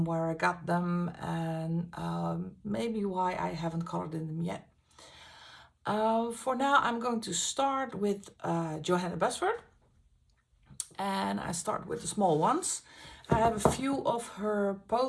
where I got them, and maybe why I haven't colored in them yet. For now, I'm going to start with Johanna Basford, and I start with the small ones. I have a few of her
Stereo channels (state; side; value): identical; both; correlation 1.00